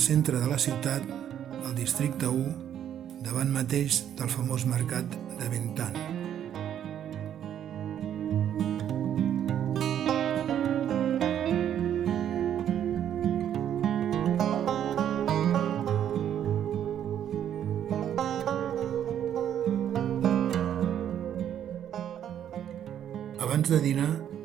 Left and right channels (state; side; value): quieter; left; 10.0 dB